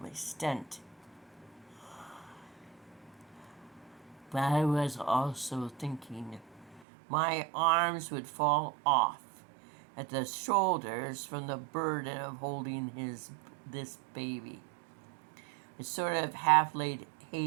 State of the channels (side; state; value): left; drops out; at 6.8 s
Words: extent. But I was also thinking my arms would fall off at the shoulders from the burden of holding this baby. I sort of half laid